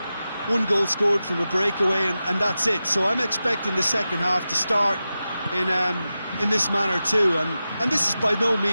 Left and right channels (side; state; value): both; inverted; correlation -0.93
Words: One goal scored from a breakaway, and that's it. So I'm expecting the second half to start in this manner too. And this is by no